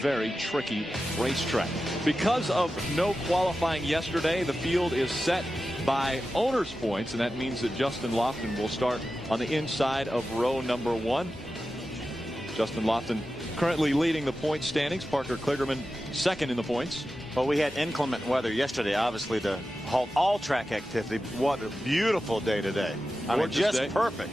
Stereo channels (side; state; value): both; normal; correlation 0.92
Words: very tricky racetrack. Because of no qualifying yesterday, the field is set by owner's points, and that means that Justin Lofton will start on the inside of row number 1. Justin Lofton currently leading the point standings. Parker Kligerman 2nd in the points. Well, we had inclement weather yesterday, obviously, to halt all track activity. What a beautiful day today. I mean, just perfect.